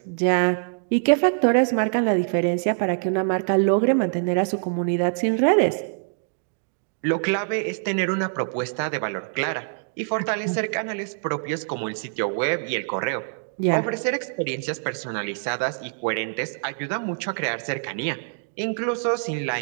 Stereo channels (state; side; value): silent; left; digital silence